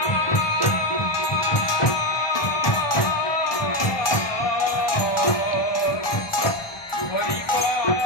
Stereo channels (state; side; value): late; right; 1.2 ms